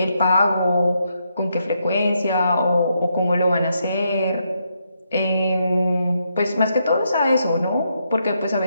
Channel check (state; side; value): inverted; both; correlation -0.79